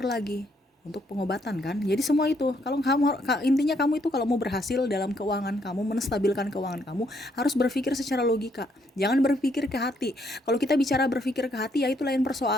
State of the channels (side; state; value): both; normal; correlation 0.72